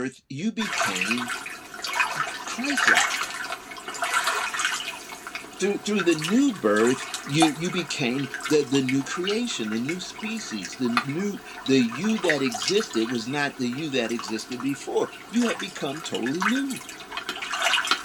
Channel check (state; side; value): identical; both; correlation 1.00